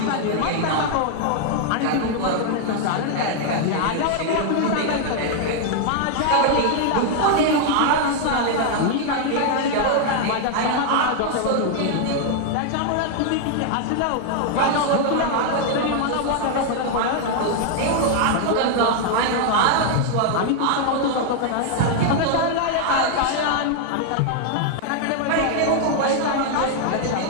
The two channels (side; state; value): both; different; correlation 0.00